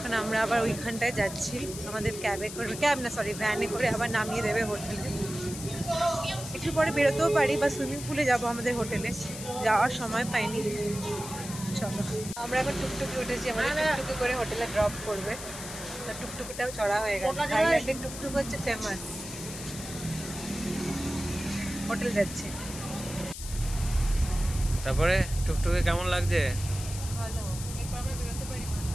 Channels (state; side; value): noise; left; hiss, 10 dB below the sound